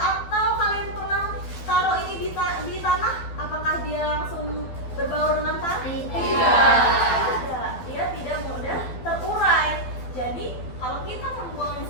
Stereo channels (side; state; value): right; late; 12 ms